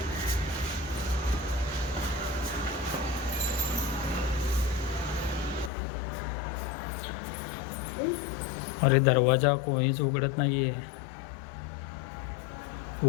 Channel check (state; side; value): drops out; right; at 5.7 s